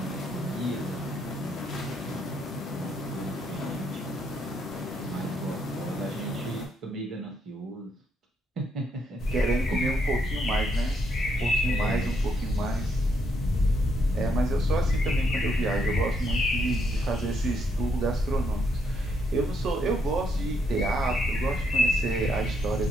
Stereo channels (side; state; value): both; normal; correlation 0.75